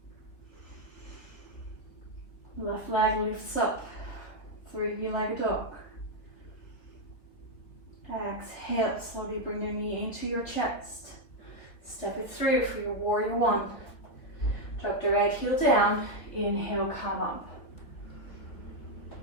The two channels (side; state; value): right; late; 3.5 ms